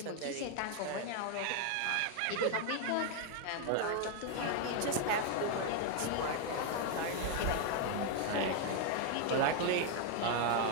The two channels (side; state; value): both; different; correlation 0.01